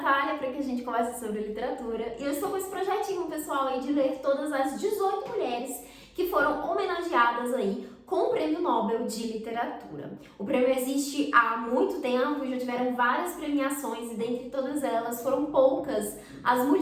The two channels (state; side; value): identical; both; correlation 1.00